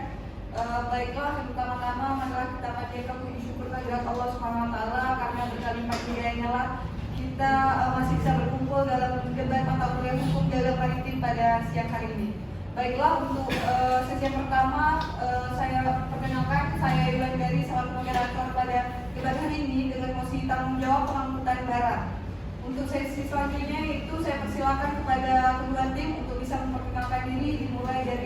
Baiklah, yang pertama-tama marilah kita panjatkan puji syukur kehadirat Allah Subhanahu Wa Taala karena berkalimat hidayahnya lah kita masih bisa berkumpul dalam debat mata kuliah hukum dalam maritim pada siang hari ini. Baiklah, untuk sesi yang pertama saya perkenalkan, saya Iwan dari selaku moderator pada debat hari ini dengan mosi tanggung jawab pengangkutan barang. Untuk sesi selanjutnya itu saya persilakan kepada kedua tim untuk bisa memperkenalkan diri, dimulai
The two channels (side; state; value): both; identical; correlation 1.00